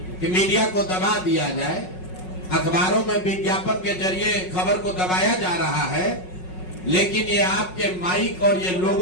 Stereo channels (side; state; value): right; late; 5.4 ms